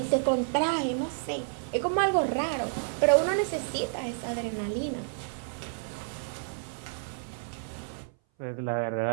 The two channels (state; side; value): silent; left; 57 dB below the other